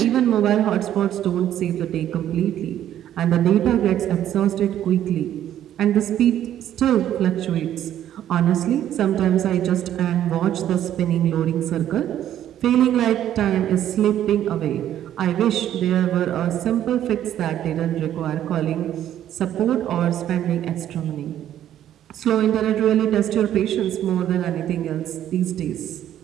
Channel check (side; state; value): left; quieter; 11.3 dB